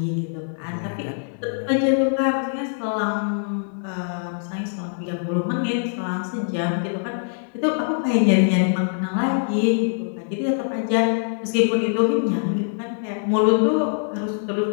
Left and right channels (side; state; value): right; silent; digital silence